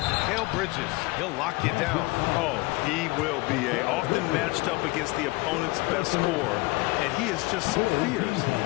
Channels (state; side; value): quieter; right; 23.8 dB